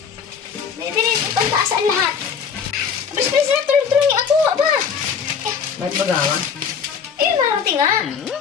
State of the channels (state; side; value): quieter; right; 6.6 dB